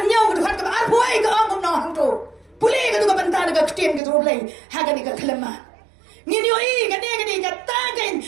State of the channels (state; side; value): drops out; left; at 4.0 s